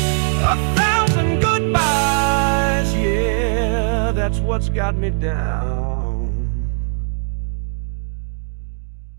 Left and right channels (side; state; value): left; silent; digital silence